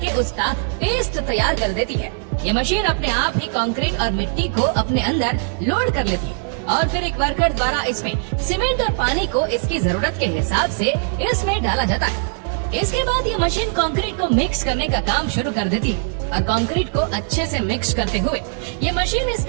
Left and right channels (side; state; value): left; silent; digital silence